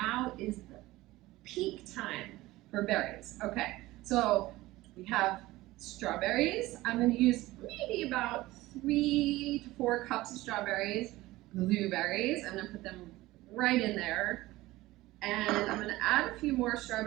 is the peak time for berries. Okay, so we have strawberries. I'm going to use maybe about 3 to 4 cups of strawberries. Blueberries, I'm going to put them right in there. And I'm going to add a few more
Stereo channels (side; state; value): left; quieter; 18.2 dB